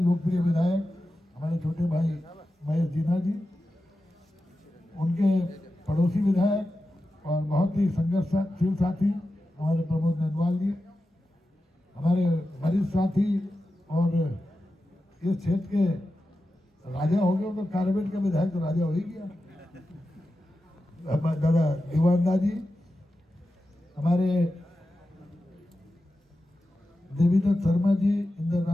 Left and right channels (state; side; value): normal; both; correlation 0.92